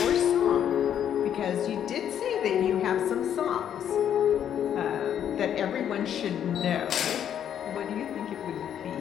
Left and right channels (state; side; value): quieter; right; 9.5 dB